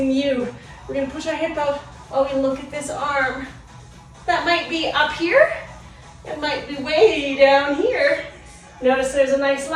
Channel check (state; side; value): identical; both; correlation 1.00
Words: you. We're going to push our hip out while we look at this arm. That might be up here. It might be way down here. Notice there's a nice